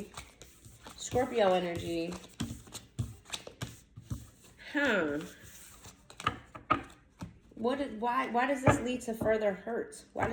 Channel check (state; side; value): identical; both; correlation 1.00